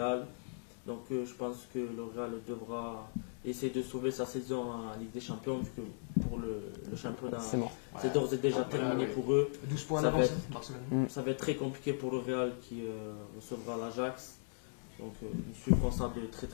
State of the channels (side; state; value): right; silent; digital silence